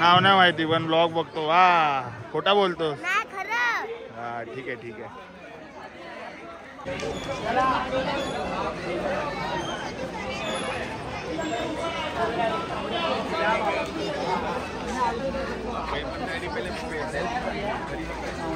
नाही माहिती पण ब्लॉग बघतो. वा, खोटा बोलतो? नाही, खरं. हा, ठीक आहे ठीक आहे.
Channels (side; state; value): both; identical; correlation 1.00